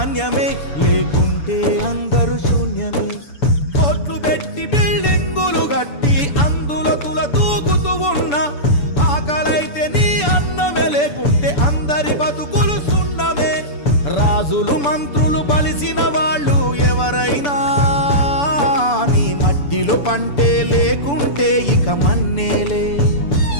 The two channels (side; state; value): right; late; 6.9 ms